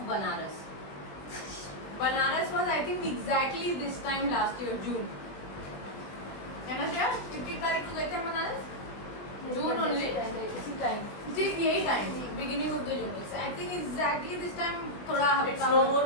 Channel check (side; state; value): right; late; 20 ms